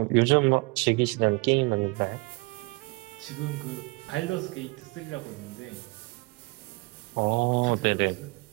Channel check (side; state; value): left; quieter; 26.3 dB